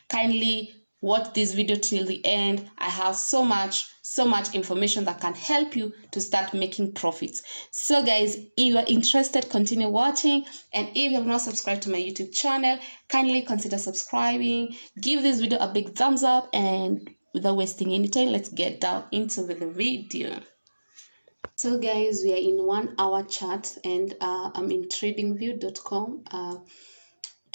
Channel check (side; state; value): both; inverted; correlation -1.00